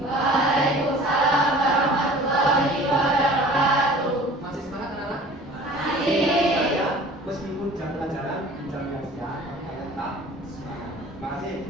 Waalaikumsalam warahmatullahi wabarakatuh. Masih semangat anak-anak? Masih. Ya, meskipun jam pelajaran di jam yang siang, kalian tetap semangat. Terima kasih.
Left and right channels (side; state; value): both; normal; correlation 0.45